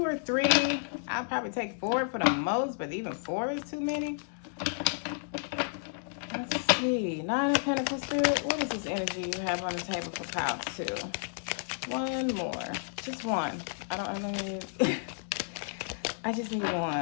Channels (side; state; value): right; silent; digital silence